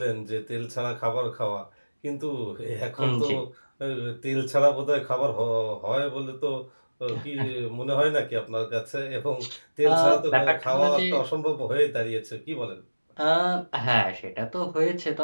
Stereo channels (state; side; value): inverted; both; correlation -1.00